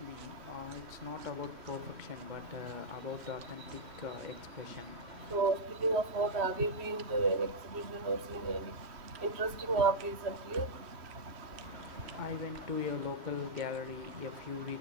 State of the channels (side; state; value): left; late; 3.1 ms